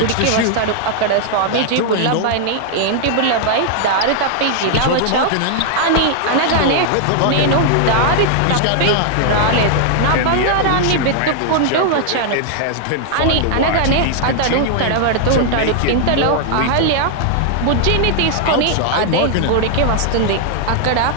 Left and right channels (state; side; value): different; both; correlation 0.00